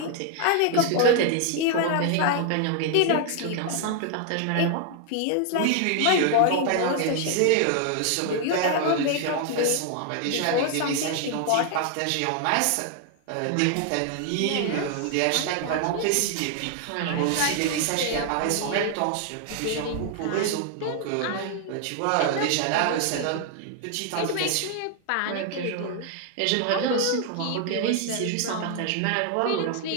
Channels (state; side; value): different; both; correlation 0.00